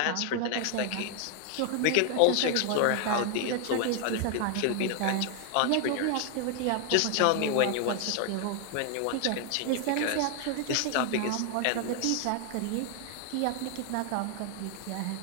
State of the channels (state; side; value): different; both; correlation 0.00